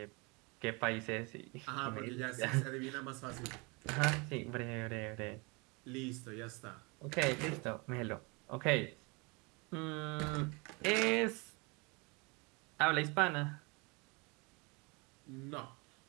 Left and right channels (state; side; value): quieter; left; 28.7 dB